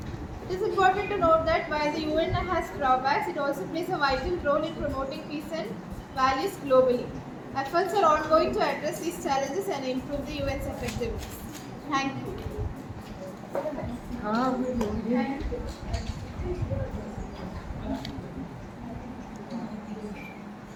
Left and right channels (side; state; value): both; identical; correlation 1.00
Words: It is important to note that while the UN has drawbacks, it also plays a vital role in promoting peace and values globally. Efforts are ongoing to address these challenges and improve the UN's effectiveness. Thank you.